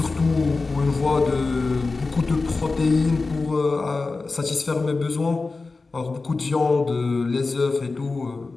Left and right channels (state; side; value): quieter; right; 3.8 dB